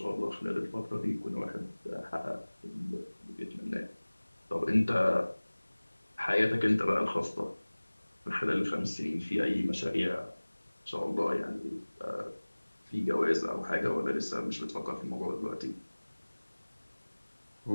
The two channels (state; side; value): inverted; both; correlation -1.00